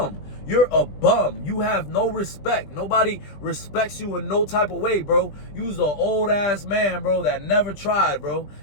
You're a bum. You have no respect. Nobody respects you in no type of way, bro. You's an old-ass man, bro, that never tried, bro.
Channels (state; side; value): late; right; 20 ms